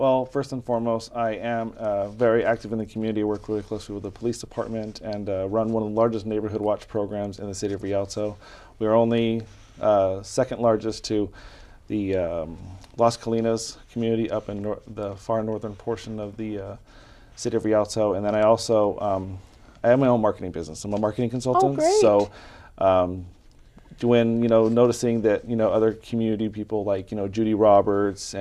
first and foremost, I am very active in the community. I work really closely with the police department and run one of the largest neighborhood watch programs in the city of Rialto. We are only second largest to the Las Colinas community up in the far northern portion of the city of Rialto. And then I also, I have my own marketing business. I'm a marketing consultant. Oh, great. So when, noticing that, other community people like, Judy Roberts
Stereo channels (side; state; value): both; identical; correlation 1.00